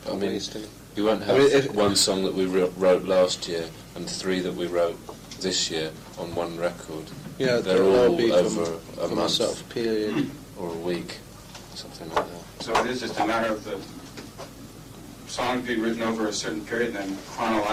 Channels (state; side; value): identical; both; correlation 1.00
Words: I mean, we won't have one song that we wrote last year and 3 that we wrote this year on one record. Yeah, they're all be over a from month a sort of period or a week, something like that. So it is just a matter of the songs being written over a certain period, and then